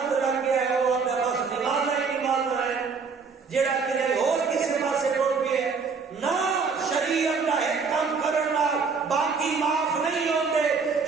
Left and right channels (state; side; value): quieter; left; 5.2 dB